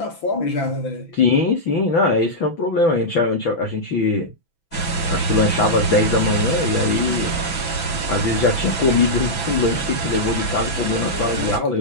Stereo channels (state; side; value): late; right; 6.0 ms